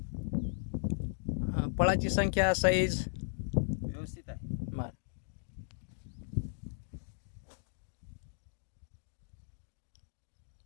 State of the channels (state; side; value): silent; right; digital silence